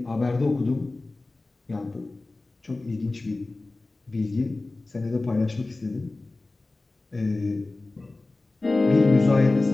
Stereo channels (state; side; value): quieter; right; 3.2 dB